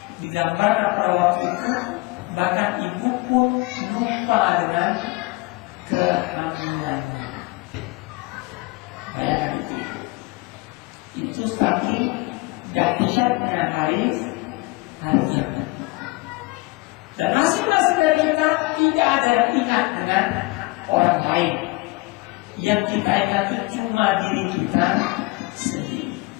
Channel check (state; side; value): quieter; right; 23.9 dB